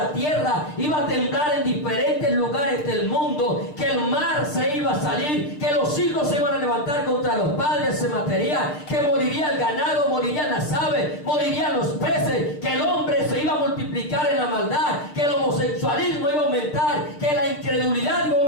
tierra iba a temblar en diferentes lugares del mundo, que el mar se iba a salir, que los hijos se iban a levantar contra los padres, se mataría, que moriría el ganado, morirían las aves, morirían los peces, que el hombre se iba a multiplicar en la maldad, que el homosexualismo iba a aumentar, que la incredulidad iba a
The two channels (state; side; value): late; right; 6.7 ms